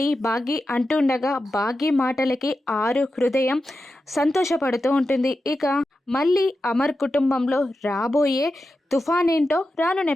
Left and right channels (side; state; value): both; normal; correlation 0.91